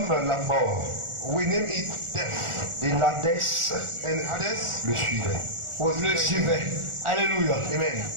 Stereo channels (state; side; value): late; left; 1.4 ms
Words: la mort. we name it death. Et l'Hadès And Hades le suivait. was Le suivait. Alléluia. Amen.